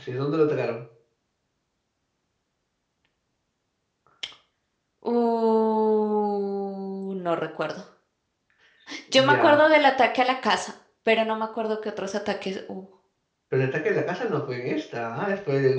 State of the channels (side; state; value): both; identical; correlation 1.00